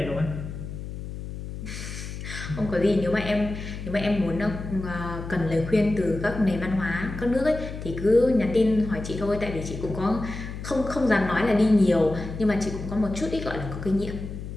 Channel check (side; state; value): left; noise; hum, 9 dB below the sound